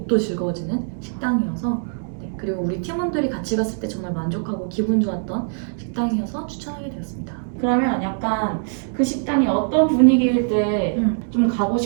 즐거워지는 식당이어서 그리고 우리 팀원들이 같이 갔을 때 정말 만족하고 기분 좋았던 식당이어서 추천하게 되었습니다. 그러면 약간 그 식당이 어떤 분위기일 때 좀 가고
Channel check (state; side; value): silent; left; 64 dB below the other